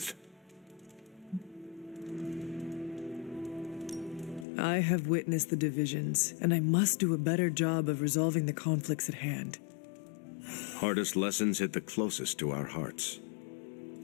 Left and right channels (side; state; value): right; drops out; at 4.5 s